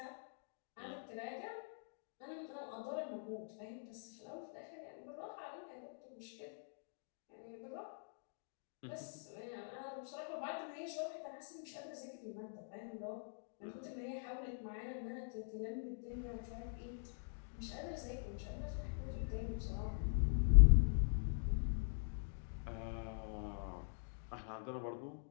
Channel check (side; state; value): right; silent; digital silence